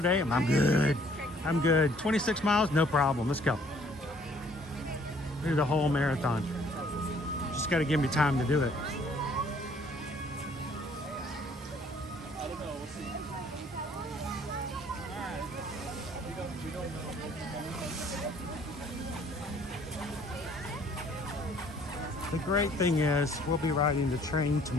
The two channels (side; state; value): both; normal; correlation 0.60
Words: day, I'm good. I'm good. 26 miles, no problem. Let's go. Do the whole marathon. Just got to give me time to do it. The great thing is we'll be riding the train